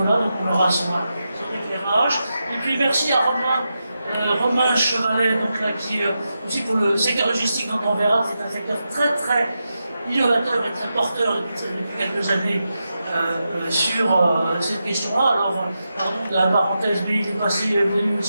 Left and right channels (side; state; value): both; inverted; correlation -0.88